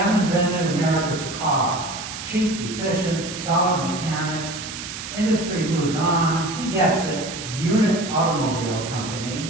invented America's car. Cheap, efficient, solid mechanics. Industry moves on. He gets it. Unit Automobile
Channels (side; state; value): right; noise; hiss, 9 dB below the sound